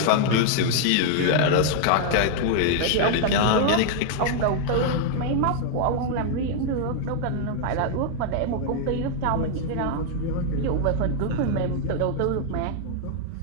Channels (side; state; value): both; different; correlation -0.01